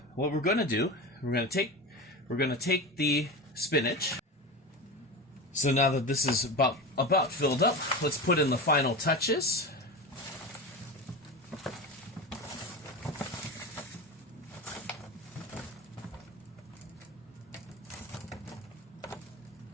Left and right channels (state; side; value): normal; both; correlation 0.26